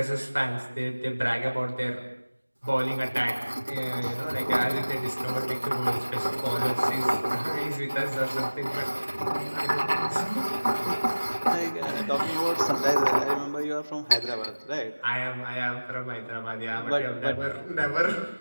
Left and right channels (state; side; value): inverted; both; correlation -1.00